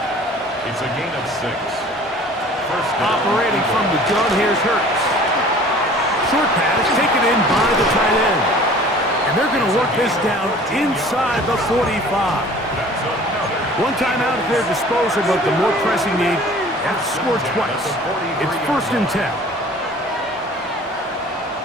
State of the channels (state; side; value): normal; both; correlation 0.48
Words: It's a gain of 6. 1st down. Operating from the gun, here's Hurts. Short pass taken in by the tight end. And they're going to work this down inside the 45. One timeout at their disposal, but the more pressing need, they have to score twice. It's 1st and 10.